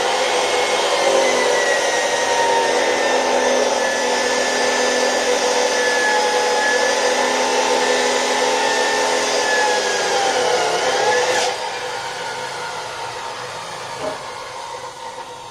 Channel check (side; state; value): both; identical; correlation 1.00